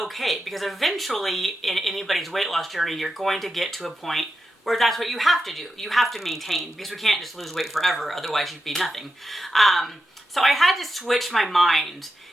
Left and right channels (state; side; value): normal; both; correlation 0.88